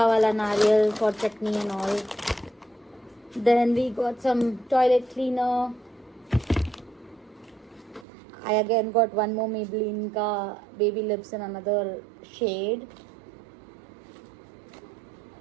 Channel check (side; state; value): left; drops out; at 8.1 s